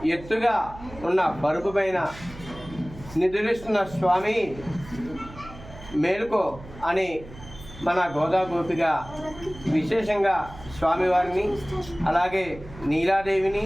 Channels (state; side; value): noise; right; hum, 17 dB below the sound